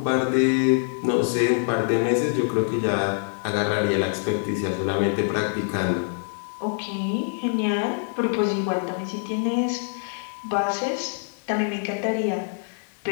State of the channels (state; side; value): silent; right; 62 dB below the other